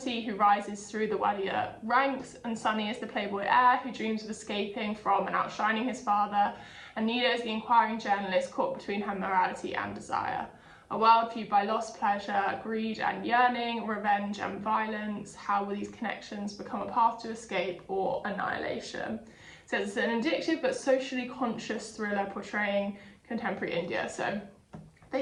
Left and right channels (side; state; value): both; identical; correlation 1.00